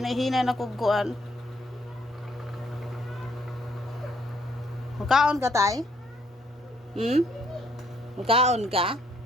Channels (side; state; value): both; normal; correlation 0.68